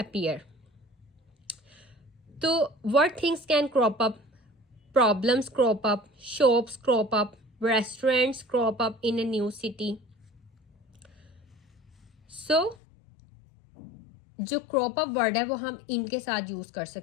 So, what things can crop up? Problems crop up, shops crop up, restaurants crop up in a new city. So, जो क्रॉप अप वर्ड है वो हम इनके साथ यूज कर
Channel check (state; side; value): drops out; right; at 12.8 s